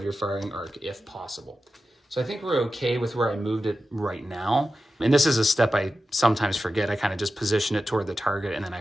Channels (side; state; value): both; normal; correlation 0.92